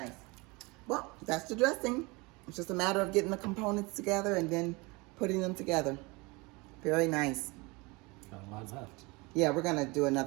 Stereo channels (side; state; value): left; quieter; 25.7 dB